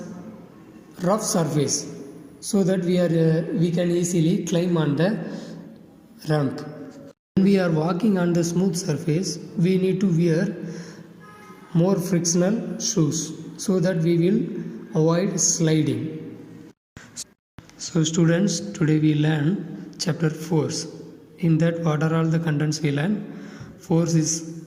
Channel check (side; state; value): both; identical; correlation 1.00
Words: rough surface, so that we can easily climb on the ramp. When we are walking on the smooth surface, we need to wear more frictional shoes so that we will avoid sliding. So students, today we learn chapter force. In that, what are all the contents we learn? Force is